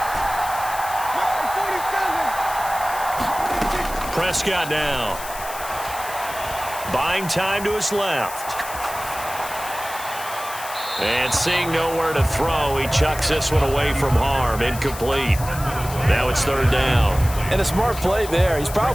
Prescott now. Buying time to his left. And seeing nowhere to throw, he chucks this one away from harm. Incomplete. Now it's third down. And a smart play there. He's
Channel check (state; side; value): noise; left; hiss, 12 dB below the sound